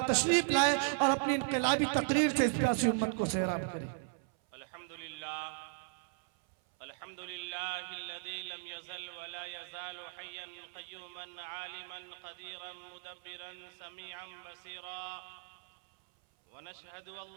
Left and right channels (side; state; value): left; silent; 53 dB below the other